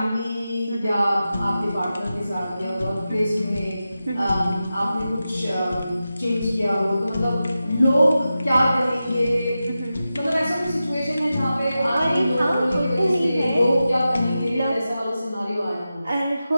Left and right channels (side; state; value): both; inverted; correlation -0.92